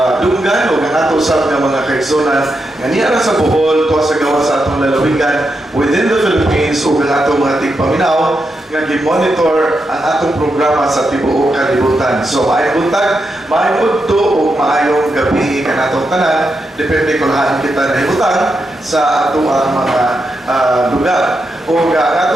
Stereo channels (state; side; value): normal; both; correlation 0.85